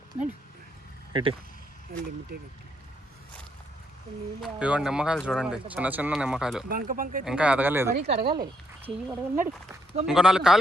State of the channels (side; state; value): both; normal; correlation 0.75